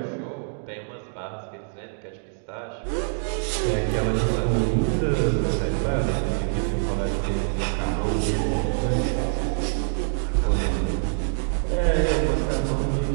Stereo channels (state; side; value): silent; left; digital silence